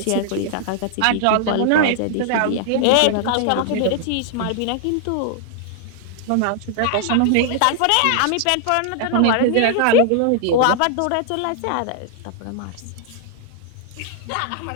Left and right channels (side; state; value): both; different; correlation 0.00